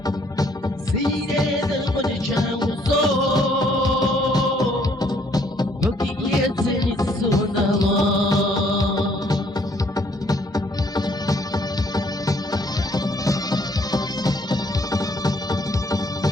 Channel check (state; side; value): normal; both; correlation 0.65